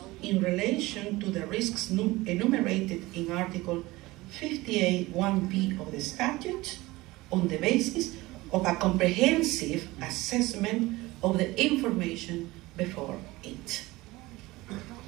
in relation to the risks enumerated in Article 58(1)b of the statute on the basis of a comprehensive assessment of the information before it.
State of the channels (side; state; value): left; quieter; 20.1 dB